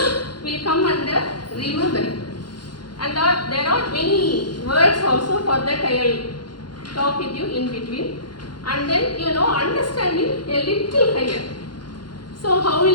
come under remembering. And there are many words also. For that I will talk with you in between. And then understanding a little higher. So how will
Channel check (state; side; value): late; right; 0.71 ms